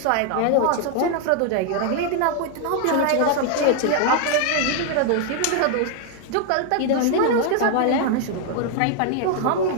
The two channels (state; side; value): different; both; correlation 0.00